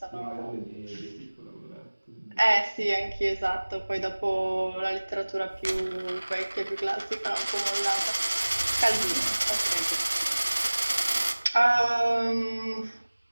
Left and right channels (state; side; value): inverted; both; correlation -1.00